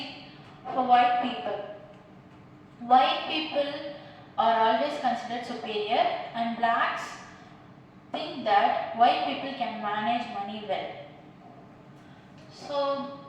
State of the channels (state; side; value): identical; both; correlation 1.00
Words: for white people are always considered superior, and blacks think that white people can manage money well, so